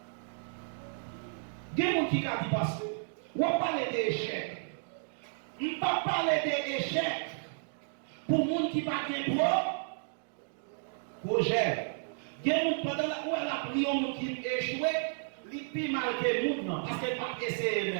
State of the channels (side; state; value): left; silent; digital silence